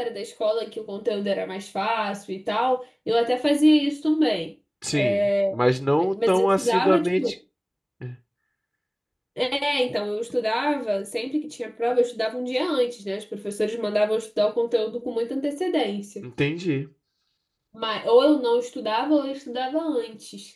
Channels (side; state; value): both; identical; correlation 1.00